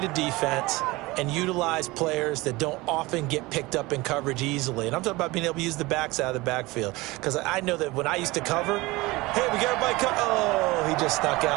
a defense and utilize players that don't often get picked up in coverage easily. And I'm talking about being able to use the backs out of the backfield. Because I know that when I used to cover, hey, we got everybody cut. Oh, he just stuck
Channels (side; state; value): left; quieter; 21.6 dB